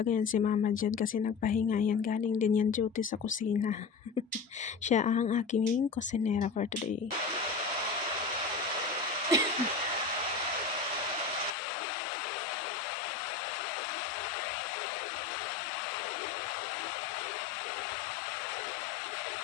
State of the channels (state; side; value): drops out; right; at 11.5 s